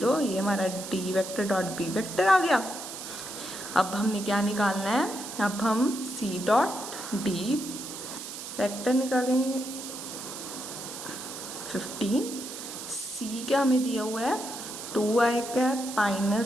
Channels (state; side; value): noise; right; hiss, 9 dB below the sound